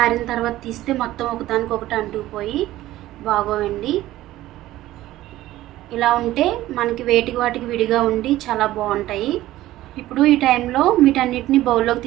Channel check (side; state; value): left; quieter; 15.4 dB